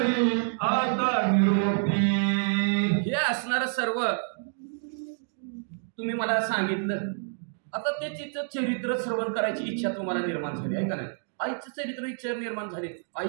आता निरोपी. हे असणार सर्व तुम्ही मला सांगितलं. आता ते तिचं चरित्र श्रवण करायची इच्छा तुम्हाला निर्माण झाली, आहे का नाही. आईचं चरित्र इच्छा निर्माण झाली, आई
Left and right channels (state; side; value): silent; left; 59 dB below the other